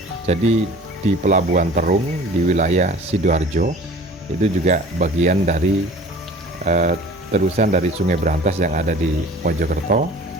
Jadi di Pelabuhan Terung di wilayah Sidoarjo, itu juga bagian dari terusan dari Sungai Brantas yang ada di Mojokerto.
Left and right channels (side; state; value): both; normal; correlation 0.45